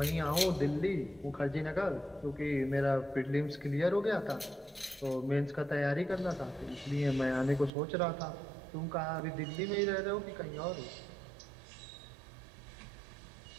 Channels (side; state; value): left; drops out; at 7.7 s